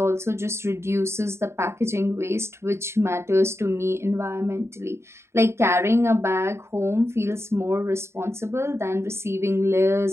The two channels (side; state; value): left; late; 0.13 ms